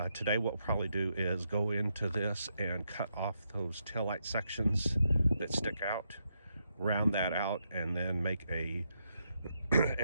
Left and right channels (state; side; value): inverted; both; correlation -0.81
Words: today what we'll probably do is go into this and cut off those taillight sections that stick out, round that out, and then make a